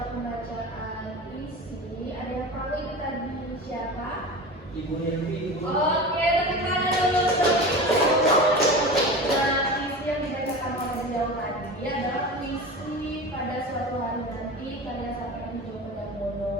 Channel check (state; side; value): normal; both; correlation 0.31